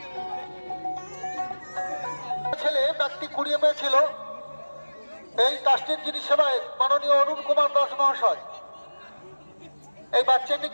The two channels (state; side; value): inverted; both; correlation -1.00